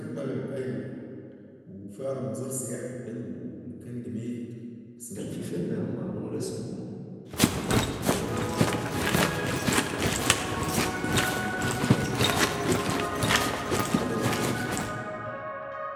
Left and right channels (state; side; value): identical; both; correlation 1.00